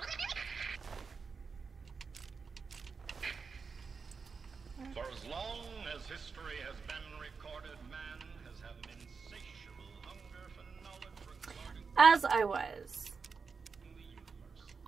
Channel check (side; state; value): left; quieter; 5.2 dB